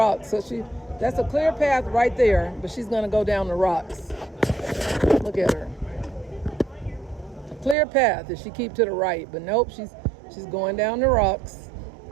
So that's a clear path right there, but she's going to go down the rocks. Look at her. A clear path if she keep to the right, but nope, she's going down the rocks.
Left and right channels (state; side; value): drops out; left; at 7.8 s